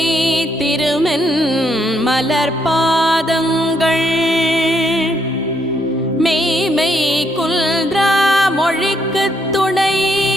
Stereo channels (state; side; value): normal; both; correlation 0.74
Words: திருமென் மலர்பாதங்கள் மெய்மை குல்ரா மொழிக்கு துணை